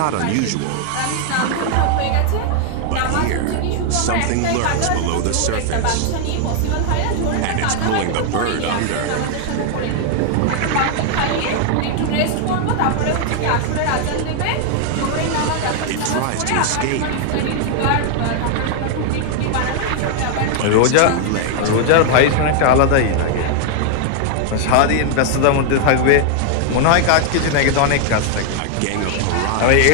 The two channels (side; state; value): both; different; correlation 0.00